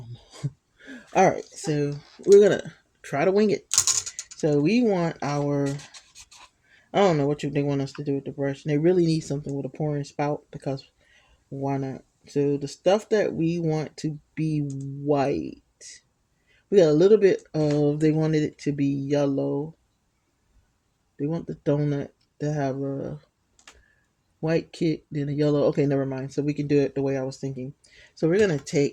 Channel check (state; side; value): identical; both; correlation 1.00